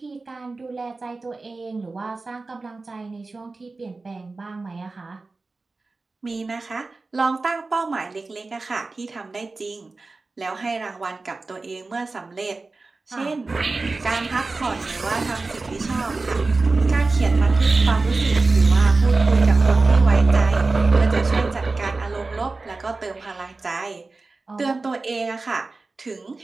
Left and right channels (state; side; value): quieter; left; 3.6 dB